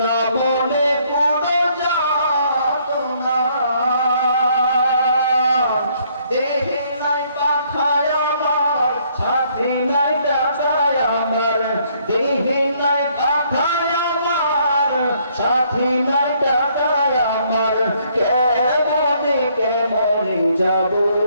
না মনে কোনো যাতনা, দেহে নাই পাখায় আমার, সাথে নাই টাকায় আমার, দেহে নাই পাখায় আমার, সাথে নাই টাকায় আমার, কেমনে কেমনে যাব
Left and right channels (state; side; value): inverted; both; correlation -0.67